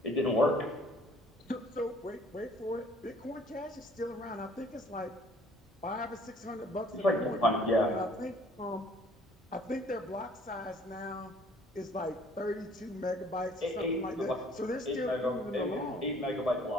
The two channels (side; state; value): both; normal; correlation 0.57